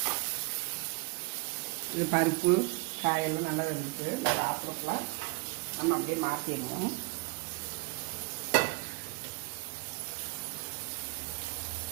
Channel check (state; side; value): quieter; left; 27.1 dB